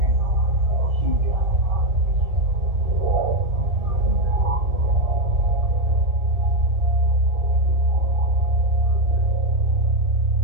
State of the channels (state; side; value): late; left; 2.1 ms